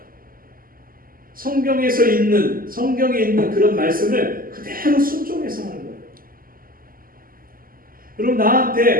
성경에 있는 그런 말씀을 그대로 순종해서 하는 거예요. 여러분,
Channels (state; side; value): late; left; 0.42 ms